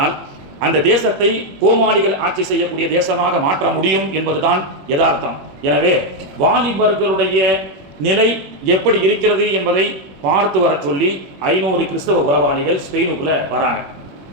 அந்த தேசத்தை கோமாளிகள் ஆட்சி செய்யக்கூடிய தேசமாக மாற்ற முடியும் என்பதுதான் யதார்த்தம். எனவே வாலிபர்களுடைய நிலை எப்படி இருக்கிறது என்பதை பார்த்து வர சொல்லி 500 கிறிஸ்தவ உளவாளிகள் ஸ்பெயினுக்குள்ள வராங்க.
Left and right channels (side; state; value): left; late; 21 ms